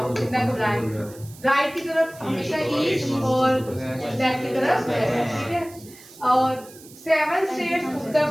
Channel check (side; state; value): right; noise; hiss, 21 dB below the sound